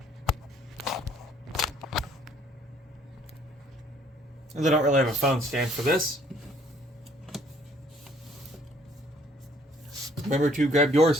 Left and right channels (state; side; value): normal; both; correlation 0.61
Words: They don't really have a phone stand for this. Remember to grab your